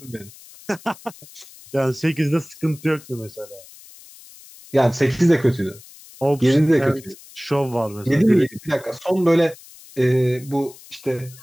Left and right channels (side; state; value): left; noise; hiss, 21 dB below the sound